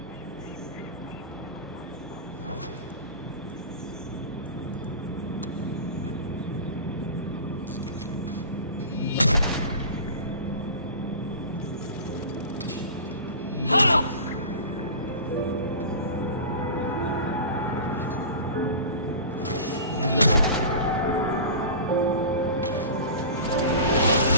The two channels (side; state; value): both; inverted; correlation -0.34